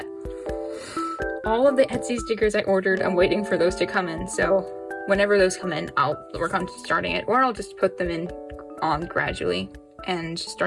All of the Etsy stickers I ordered, I'm waiting for those to come in. So whenever those come in, I'll work on starting it, or I'll just put them in on gradually and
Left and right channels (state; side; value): identical; both; correlation 1.00